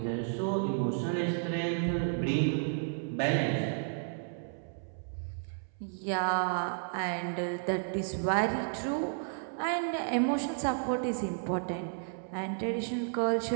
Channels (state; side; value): silent; left; 56 dB below the other